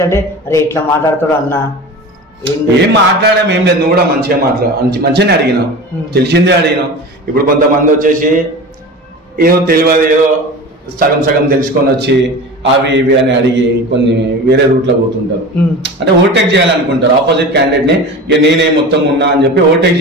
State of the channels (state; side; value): normal; both; correlation 0.33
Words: అంటే అరే ఎట్లా మాట్లాడతాడు అన్న. ఏం మాట్లాడాం ఏం లేదు, నువ్వు కూడా మంచిగానే అడిగినావు, తెలిసిందే అడిగినావు. ఇప్పుడు కొంతమంది వచ్చేసి ఏదో తెలియదు, ఏదో సగం తెలుసుకొని వచ్చి అవి ఇవి అని అడిగి కొన్ని వేరే రూట్లో పోతుంటారు. అంటే ఓవర్టేక్ చేయాలనుకుంటారు ఆపోజిట్ క్యాండిడేట్ ని. ఇక నేనే మొత్తం ఉన్నా అని చెప్పి ఓవర్టేక్